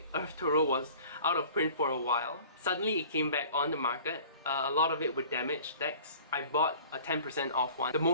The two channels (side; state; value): both; inverted; correlation -0.47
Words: Earth Tarot was out of print for a while. Suddenly it came back on the market. A lot of it were damaged decks. I bought a 10% off one, the